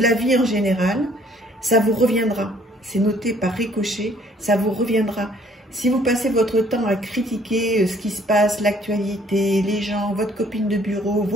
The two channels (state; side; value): normal; both; correlation 0.60